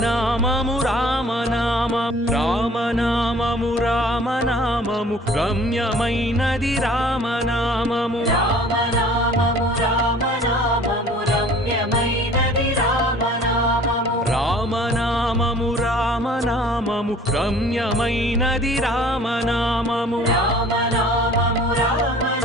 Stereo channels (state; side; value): normal; both; correlation 0.50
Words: రామనామము. రామనామము రామనామము రమ్యమైనది రామనామము. రామనామము రామనామము రమ్యమైనది రామనామము. రామనామము రామనామము రమ్యమైనది రామనామము. రామనామము